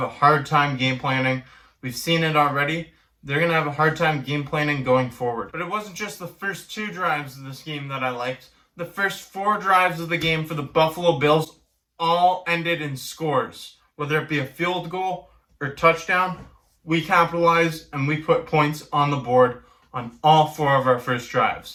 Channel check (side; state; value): both; identical; correlation 1.00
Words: a hard time game planning. We've seen it already. They're going to have a hard time game planning going forward. But it wasn't just the first 2 drives of this game that I liked. The first 4 drives of the game for the Buffalo Bills all ended in scores. Whether it be a field goal or touchdown, we capitalized and we put points on the board on all 4 of our first